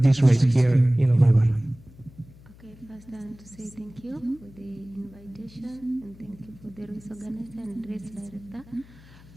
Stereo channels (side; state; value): left; noise; hum, 23 dB below the sound